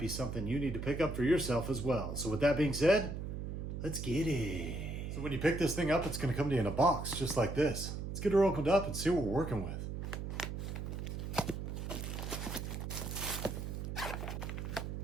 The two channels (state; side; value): noise; right; hum, 5 dB below the sound